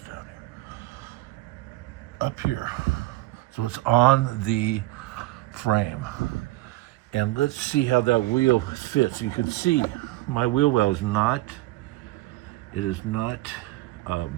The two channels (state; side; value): quieter; left; 19.0 dB